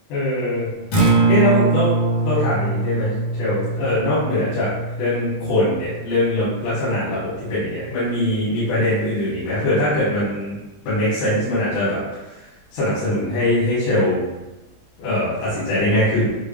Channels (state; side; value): late; right; 20 ms